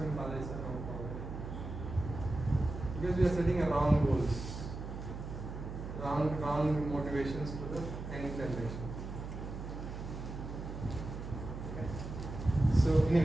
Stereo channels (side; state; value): right; noise; hum, 8 dB below the sound